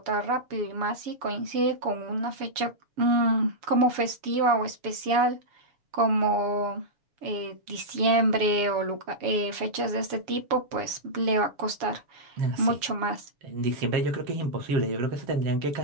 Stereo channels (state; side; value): late; left; 7.0 ms